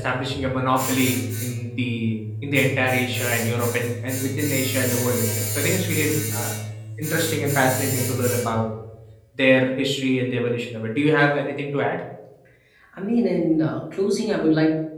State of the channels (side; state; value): both; identical; correlation 1.00